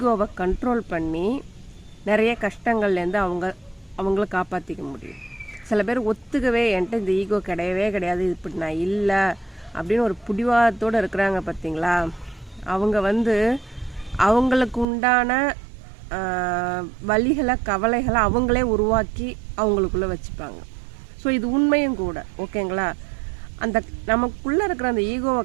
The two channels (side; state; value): left; drops out; at 14.9 s